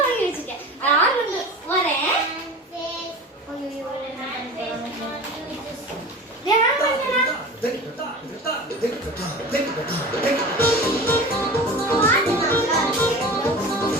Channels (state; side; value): normal; both; correlation 0.34